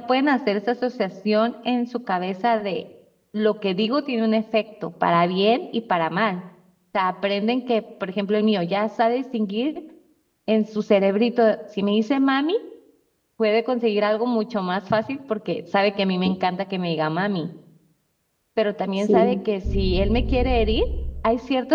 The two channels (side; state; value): both; identical; correlation 1.00